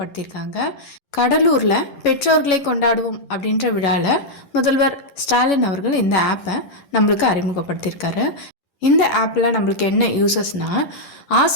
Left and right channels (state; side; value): late; right; 11 ms